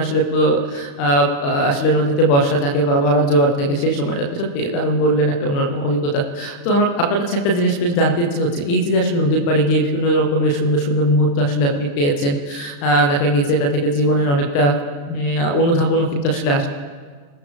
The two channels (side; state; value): right; late; 35 ms